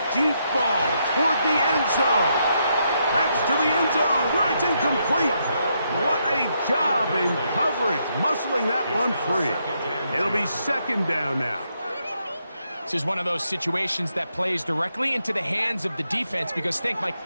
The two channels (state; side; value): inverted; both; correlation -0.78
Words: deep ball toward the end zone. That's to the end zone where it's incomplete. What a job in coverage, muscling that one free. It'll be second down now. This is one of those situations that plays directly into the hands of the defense because think, Mike,